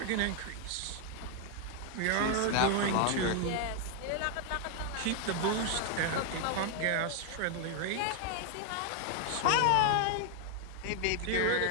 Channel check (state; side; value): different; both; correlation 0.00